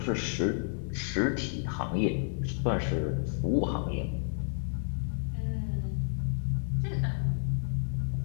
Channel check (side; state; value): right; silent; digital silence